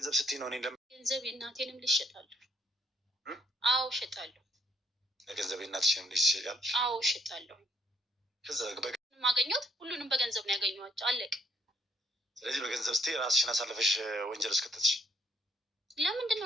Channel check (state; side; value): normal; both; correlation 0.67